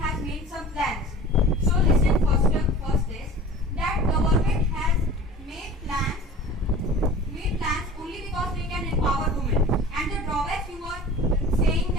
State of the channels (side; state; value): both; normal; correlation 0.41